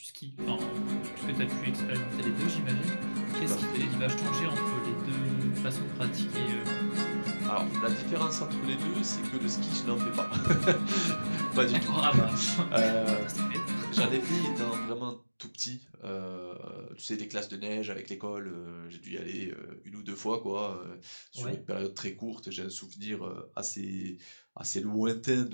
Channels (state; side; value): inverted; both; correlation -1.00